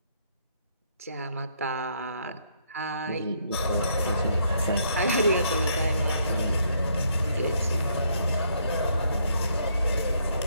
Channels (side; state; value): both; inverted; correlation -0.71